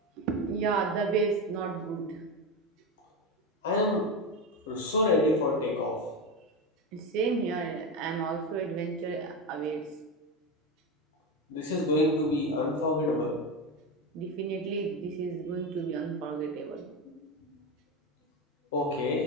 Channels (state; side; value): normal; both; correlation 0.17